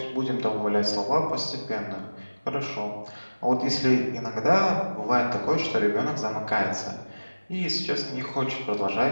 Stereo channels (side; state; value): both; inverted; correlation -1.00